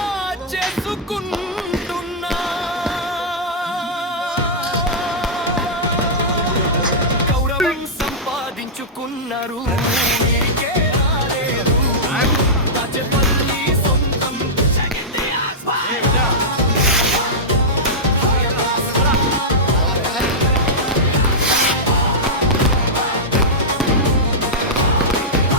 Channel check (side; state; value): both; normal; correlation -0.11